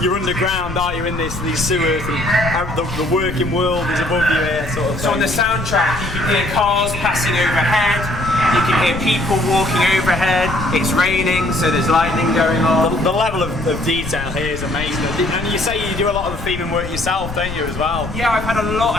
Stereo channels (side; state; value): left; noise; rumble, 10 dB below the sound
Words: you're underground, aren't you, in these sewers. And the working world is above you here, sort of thing. So on the soundtrack, you can hear cars passing overhead. You can hear people walking overhead. It's raining, so there's lightning going on. The level of detail here is amazing. And you say you do a lot of the theming work yourself, don't you, as well? Yeah, I've had a lot